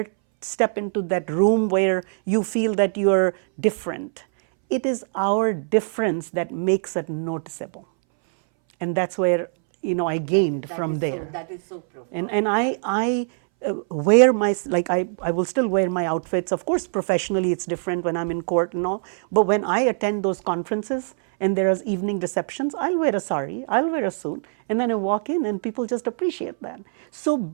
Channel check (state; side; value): silent; left; 62 dB below the other